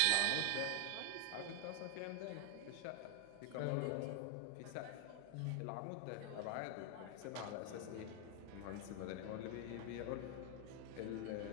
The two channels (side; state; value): both; different; correlation 0.00